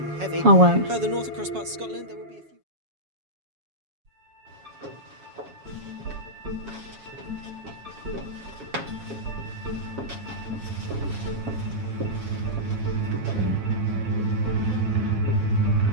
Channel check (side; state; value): left; late; 7.2 ms